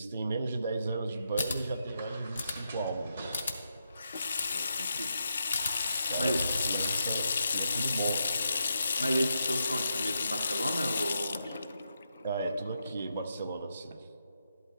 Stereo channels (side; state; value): both; inverted; correlation -0.83